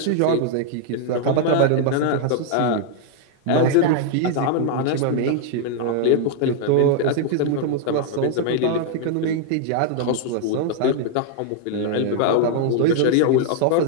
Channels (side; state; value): both; different; correlation 0.00